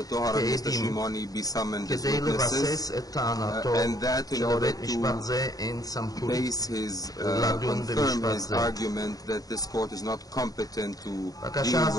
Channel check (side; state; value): right; late; 0.18 ms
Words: ושמעוני כעדים כדי לבסס את טענתו שלבית משפט זה אין סמכות לדון במשפט זה. בקשה